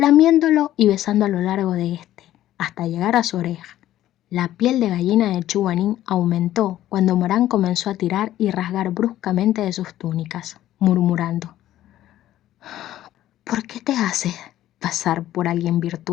y besando a lo largo de éste, hasta llegar a su oreja. La piel de gallina de Chuanin aumentó cuando Morán comenzó a tirar y rasgar bruscamente de sus túnicas, murmurando: ¿por qué te haces pasar por alguien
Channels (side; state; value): right; quieter; 13.4 dB